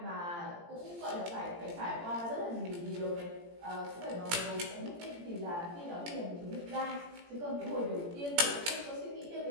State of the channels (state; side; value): late; left; 17 ms